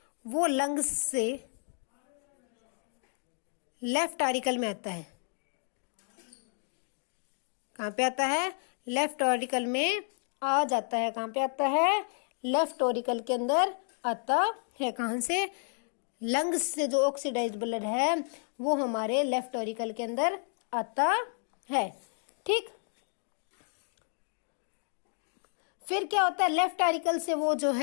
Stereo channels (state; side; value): silent; right; 57 dB below the other